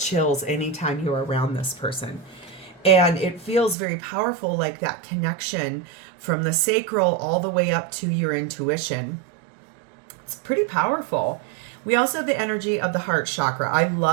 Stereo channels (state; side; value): drops out; left; at 3.8 s